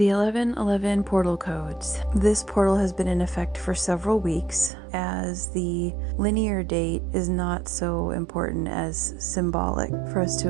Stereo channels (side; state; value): left; drops out; at 4.7 s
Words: 1111 portal codes. This portal has been in effect for several weeks, as the linear date is not so important as symbolic for us